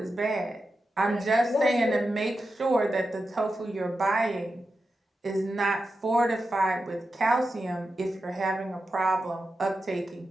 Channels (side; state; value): both; normal; correlation 0.90